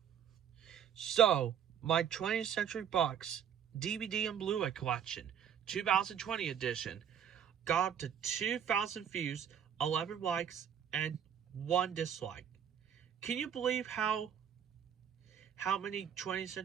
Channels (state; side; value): quieter; left; 8.6 dB